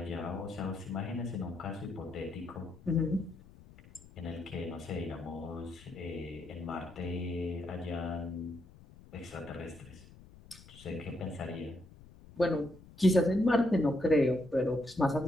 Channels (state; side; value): noise; left; rumble, 21 dB below the sound